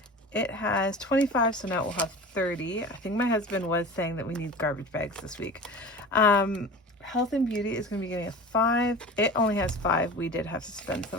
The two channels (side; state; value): both; normal; correlation 0.35